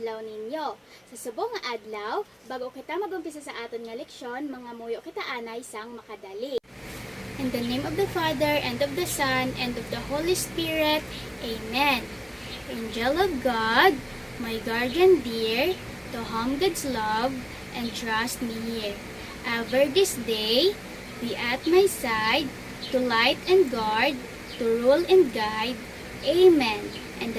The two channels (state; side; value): identical; both; correlation 1.00